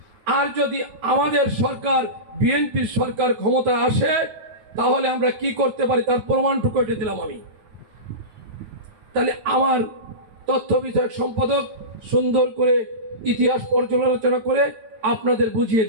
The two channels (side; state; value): left; late; 9.4 ms